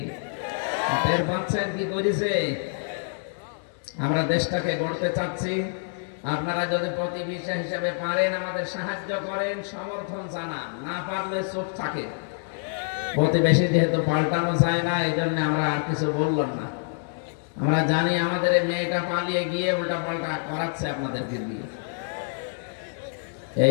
টের পাচ্ছেন কি করেছে? আমরা দেশটাকে গড়তে চাচ্ছি। আপনারা যদি প্রতিবেশী হিসেবে পারেন আমাদের সাহায্য করেন, সমর্থন জানান, না পারলে চুপ থাকে। প্রতিবেশী যেহেতু পাল্টানো যায় না, এই জন্য আমরা আর কিছু বললাম না। আমরা জানি আমাদের এই মেয়েটা পালিয়ে গিয়ে উল্টা পাল্টা করাচ্ছে আপনাদেরকে দিয়ে।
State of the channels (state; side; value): silent; right; 61 dB below the other